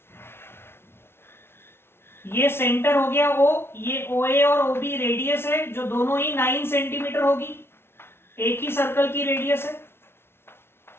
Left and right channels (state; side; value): late; right; 0.12 ms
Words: ये सेंटर हो गया ओ, ये ओ ए और ओ बी रेडियस है जो दोनों ही 9 सेंटीमीटर होगी, एक ही सर्कल की रेडियस है।